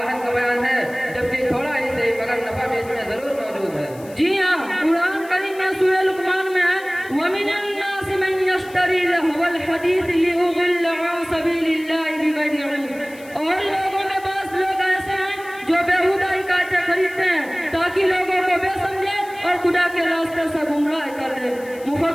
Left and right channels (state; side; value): noise; left; hiss, 22 dB below the sound